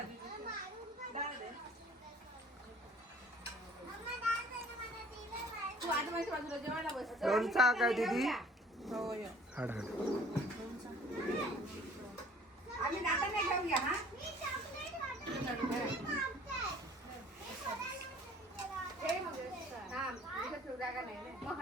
लोणचा काय दीदी. हाड हाड.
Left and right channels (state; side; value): normal; both; correlation 0.53